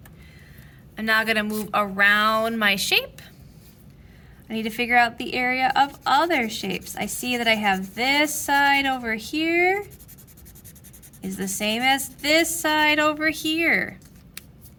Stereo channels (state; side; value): identical; both; correlation 1.00